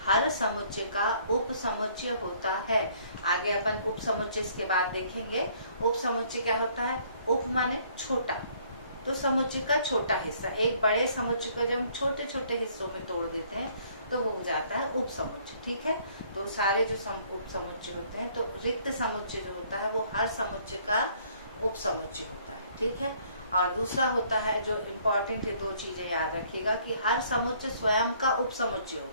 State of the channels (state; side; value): inverted; both; correlation -0.61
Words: हर समुच्चय का उप समुच्चय होता है। आगे अपन उप समुच्चय इसके बाद देखेंगे। उप समुच्चय क्या होता है, उप माने छोटा, तो समुच्चय का छोटा हिस्सा। एक बड़े समुच्चय को जब हम छोटे छोटे हिस्सों में तोड़ देते हैं तो वो हो जाता है उप समुच्चय। ठीक है, तो सारे जो उप समुच्चय होते हैं, तो रिक्त समुच्चय जो होता है वो हर समुच्चय का उप समुच्चय होता है। ठीक है, और दूसरा होता है जो इम्पोर्टेंट है, दो चीजें याद रखिएगा कि हर समुच्चय स्वयं का उप समुच्चय